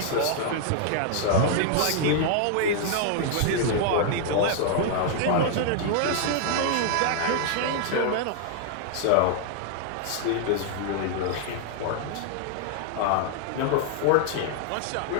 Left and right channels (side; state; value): both; different; correlation 0.00